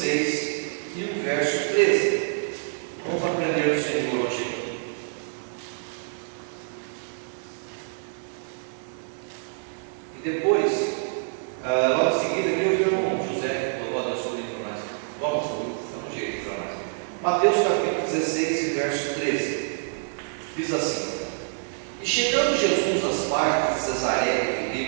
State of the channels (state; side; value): silent; left; digital silence